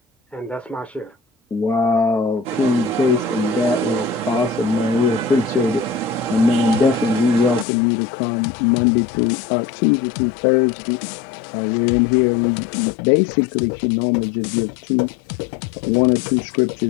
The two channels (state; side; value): drops out; right; at 7.7 s